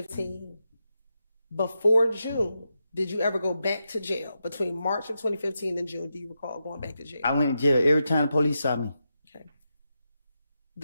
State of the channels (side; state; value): both; inverted; correlation -0.86